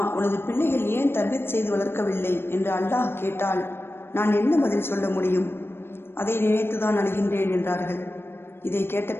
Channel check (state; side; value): late; right; 0.11 ms